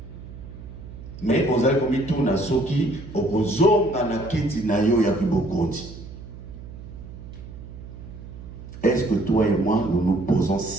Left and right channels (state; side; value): noise; right; hum, 14 dB below the sound